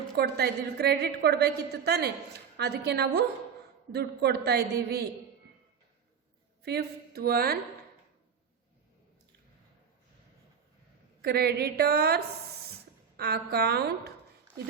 ಕೊಡ್ತಾ ಇದ್ದೀವಿ. ಕ್ರೆಡಿಟ್ ಕೊಡಬೇಕಿತ್ತು ತಾನೆ, ಅದಕ್ಕೆ ನಾವು ದುಡ್ಡು ಕೊಡ್ತಾ ಇದ್ದೀವಿ. Fifth one, creditors account.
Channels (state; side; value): quieter; left; 7.1 dB